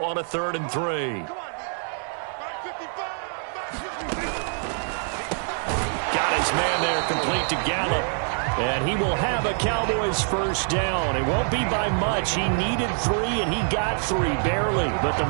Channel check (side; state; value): left; silent; 57 dB below the other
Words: on a 3rd and 3. Got his man there complete to Gallup. And he will have a Cowboys first down. It won't be by much. He needed 3 and he got 3 barely. But the